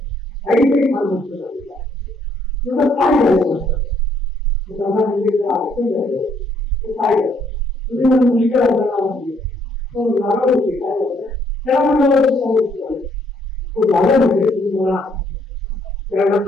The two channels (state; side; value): normal; both; correlation 0.69